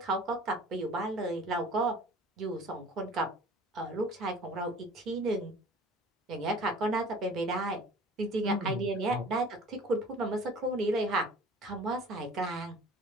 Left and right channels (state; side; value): normal; both; correlation 0.46